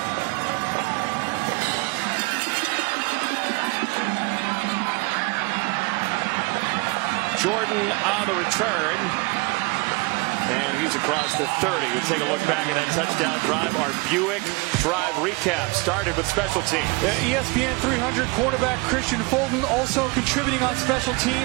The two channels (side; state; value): left; quieter; 26.6 dB